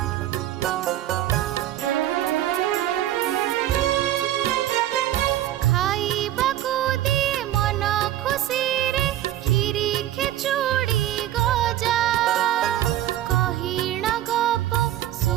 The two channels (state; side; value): quieter; left; 13.1 dB